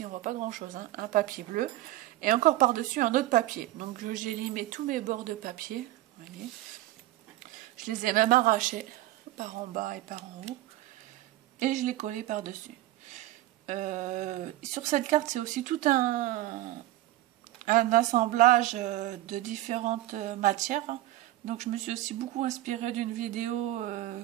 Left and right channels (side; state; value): left; quieter; 15.8 dB